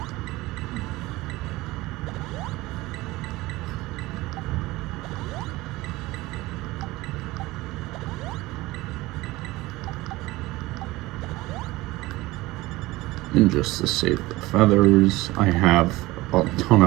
And just to save the feathers, I have a ton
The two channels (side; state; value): left; quieter; 19.4 dB